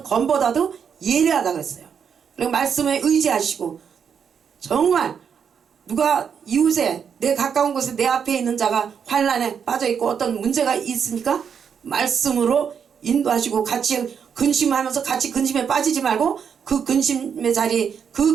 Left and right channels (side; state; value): left; quieter; 7.2 dB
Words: 검보다도 예리하다 그랬어요. 그리고 말씀에 의지하시고 정말 누가 이웃에 내 가까운 곳에 내 앞에 있는 자가 환난에 빠져 있고 어떤 문제가 있으니까 말씀으로 인도하시고 같이 근심하면서 같이 근심에 빠지지 말고 그 근심의 자리